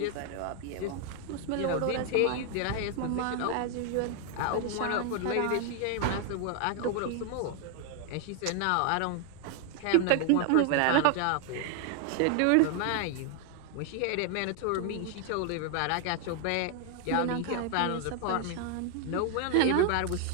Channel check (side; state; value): both; different; correlation 0.00